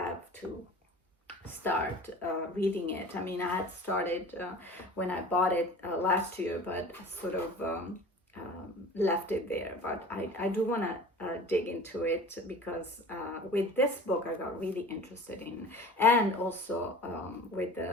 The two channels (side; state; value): both; normal; correlation 0.40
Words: to start reading it. I mean, I had started when I bought it last year, but sort of left it there. But I do want to dig into it, because with this book I got really interested in, and also with